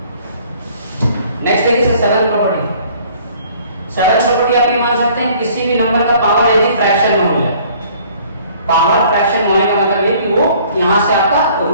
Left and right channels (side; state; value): both; inverted; correlation -0.55